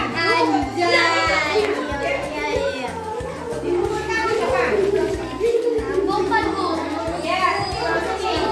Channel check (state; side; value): identical; both; correlation 1.00